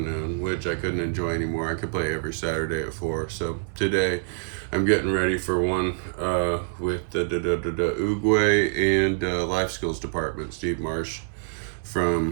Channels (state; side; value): silent; left; 61 dB below the other